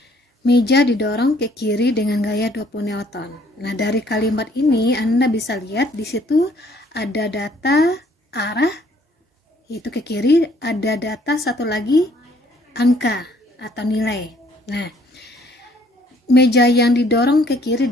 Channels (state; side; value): normal; both; correlation 0.62